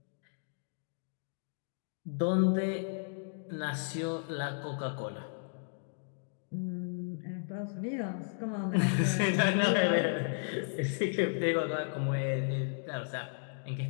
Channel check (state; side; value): silent; right; digital silence